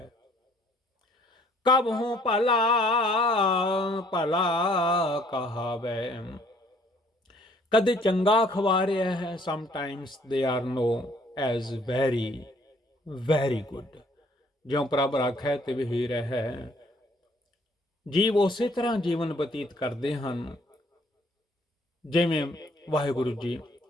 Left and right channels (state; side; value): normal; both; correlation 0.61